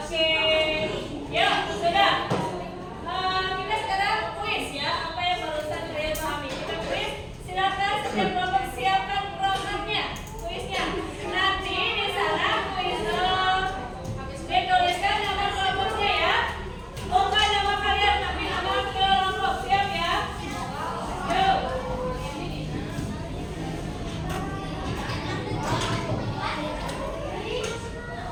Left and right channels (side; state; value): both; identical; correlation 1.00